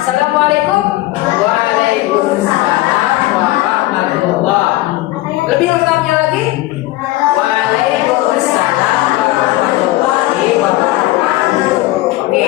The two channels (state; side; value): quieter; right; 17.7 dB